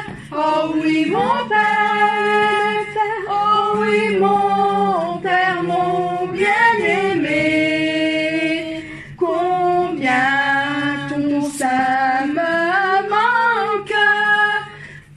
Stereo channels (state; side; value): identical; both; correlation 1.00